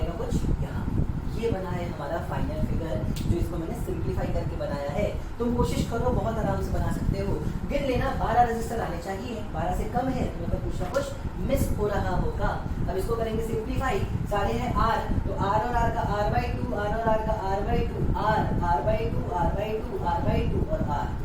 कुछ यहाँ। ये बना है हमारा फाइनल फिगर, जो इसको मैंने सिंप्लीफाई करके बनाया है। तुम कोशिश करो, बहुत आराम से बना सकते हो। गिन लेना 12 रजिस्टर आने चाहिए, 12 से कम है तो मतलब कुछ ना कुछ मिस हो रहा होगा। अब इसको करेंगे सिंप्लीफाई, सारे हैं R, तो R और R का R/2, R और R का R/2, R/2, R/2, R/2 और R।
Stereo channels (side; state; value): both; identical; correlation 1.00